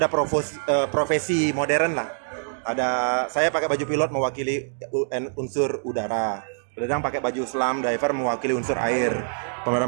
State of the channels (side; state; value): left; silent; digital silence